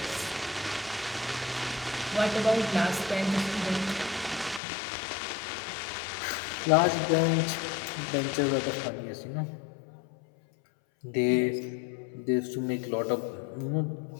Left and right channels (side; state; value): right; drops out; at 4.6 s